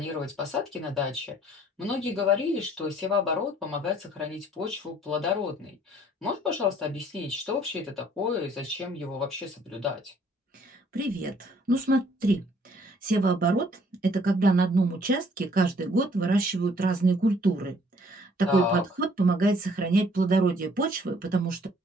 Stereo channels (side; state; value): both; normal; correlation 0.60